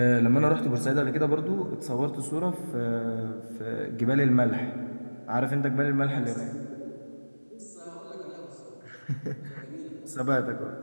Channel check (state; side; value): inverted; both; correlation -1.00